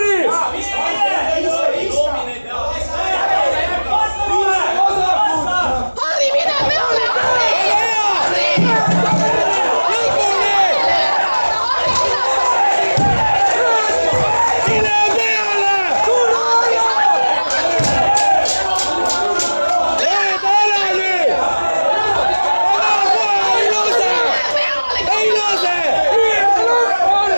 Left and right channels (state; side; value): inverted; both; correlation -1.00